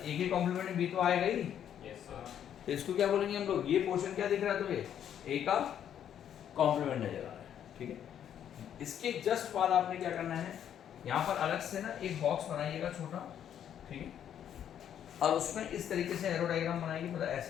की कॉम्प्लीमेंट बी तो आएगा ही। Yes sir. तो इसको क्या बोलेंगे हम लोग? ये पोर्शन क्या दिख रहा है तुम्हें? ए का कॉम्प्लीमेंट नजर आ रहा है, ठीक है। इसके जस्ट बाद आपने क्या करना है? यहाँ पर अलग से ना एक बॉक्स बनाइएगा छोटा, ठीक है, और उसमें इस तरीके से एरो डायग्राम बनाएगी। मतलब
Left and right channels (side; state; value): right; quieter; 9.6 dB